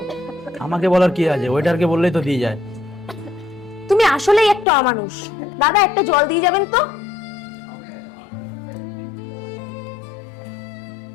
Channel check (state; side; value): drops out; right; at 4.7 s